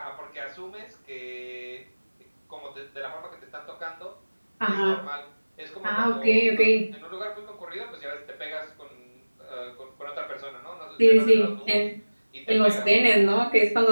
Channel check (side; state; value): both; inverted; correlation -1.00